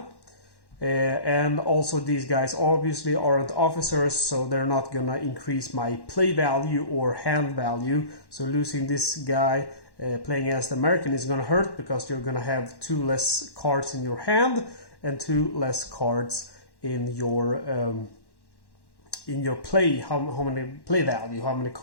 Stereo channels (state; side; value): late; right; 1.1 ms